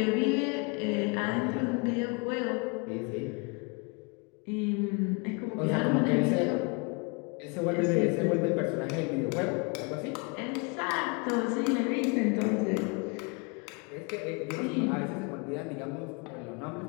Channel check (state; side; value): quieter; right; 32.3 dB